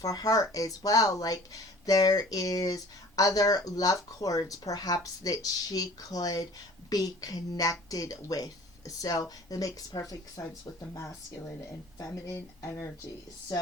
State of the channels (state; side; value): normal; both; correlation 0.48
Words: her as well. Like there is other love cords perhaps that she could be connected with. So it makes perfect sense with the masculine and feminine energies.